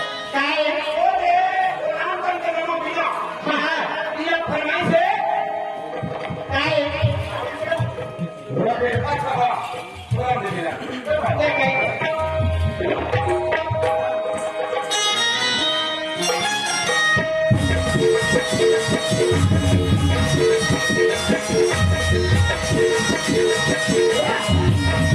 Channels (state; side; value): identical; both; correlation 1.00